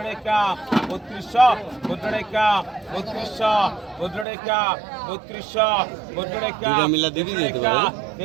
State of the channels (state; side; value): drops out; left; at 4.2 s